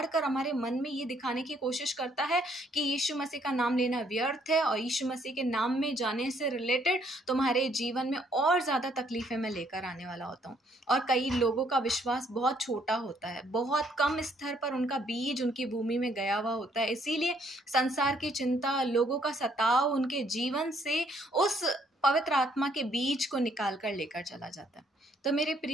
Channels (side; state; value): both; normal; correlation 0.67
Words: कर हमारे मन में ये दिखाने की कोशिश करता है कि यीशु मसीह का नाम लेना व्यर्थ है, और यीशु मसीह के नाम में जाने से रिलेटेड तुम्हारे जीवन में और ज़्यादा तकलीफ़ें मैं लेकर आने वाला होता हूँ। और कई लोगों का विश्वास बहुत छोटा होता है, बहुत कम स्तर पर उनका बीज उनकी भूमि में गया हुआ होता है, इसीलिए संसार की चिंता, लोगों का सताव उनके जीवन से उस पवित्र आत्मा के बीज को निकाल कर लेकर चला जाता है। तो मेरे